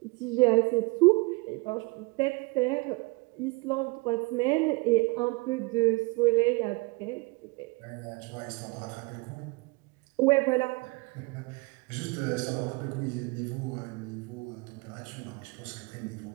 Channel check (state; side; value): quieter; left; 26.0 dB